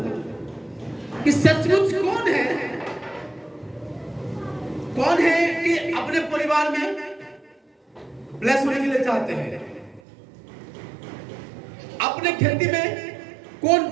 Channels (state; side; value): drops out; left; at 10.0 s